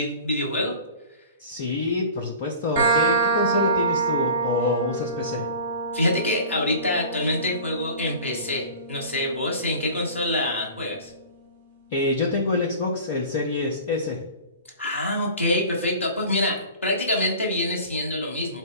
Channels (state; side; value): inverted; both; correlation -0.40